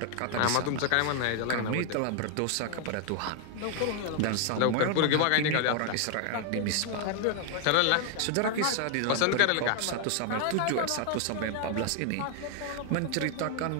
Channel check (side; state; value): both; different; correlation 0.00